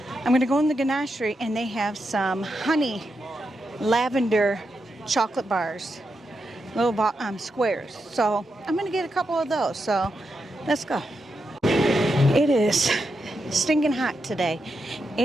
I'm going to go in the Ganachery, and they have some honey lavender chocolate bars, little squares. So I'm going to get a couple of those. So let's go. It is stinking hot today.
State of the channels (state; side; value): normal; both; correlation 0.85